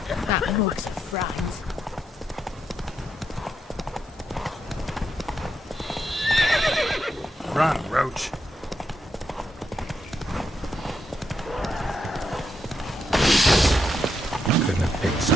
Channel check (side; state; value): both; normal; correlation 0.81